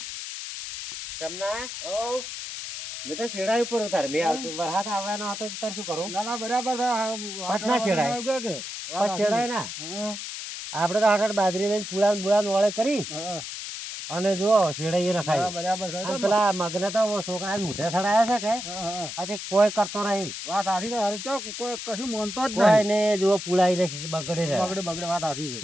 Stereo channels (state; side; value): noise; left; hiss, 7 dB below the sound